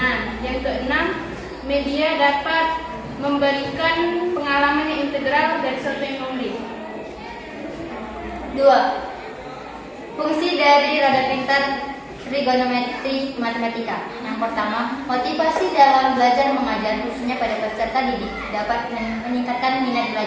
Yang keenam, media dapat memberikan pengalaman yang integral dari sesuatu yang konkret. 2. Fungsi dari roda pintar trigonometri matematika. Yang pertama, motivasi dalam belajar mengajar khususnya pada peserta didik dapat meningkatkan minat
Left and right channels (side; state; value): both; identical; correlation 1.00